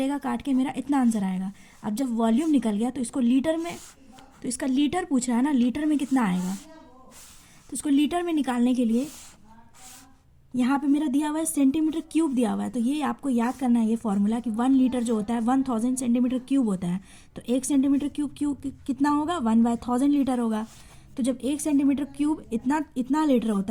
काट के मेरा इतना आंसर आएगा। अब जब वॉल्यूम निकल गया तो इसको लीटर में, तो इसका लीटर पूछ रहा है ना, लीटर में कितना आएगा, तो इसको लीटर में निकालने के लिए यहाँ पे मेरा दिया हुआ है सेंटीमीटर क्यूब दिया हुआ है। तो ये आपको याद करना है ये फॉर्मूला कि 1 लीटर जो होता है 1000 सेंटीमीटर क्यूब होता है। तो 1 सेंटीमीटर क्यूब कितना होगा 1/1000 लीटर होगा। तो जब 1 सेंटीमीटर क्यूब इतना लीटर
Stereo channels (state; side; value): identical; both; correlation 1.00